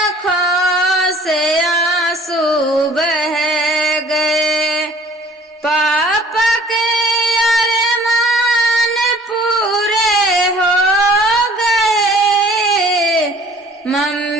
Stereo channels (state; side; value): normal; both; correlation 0.52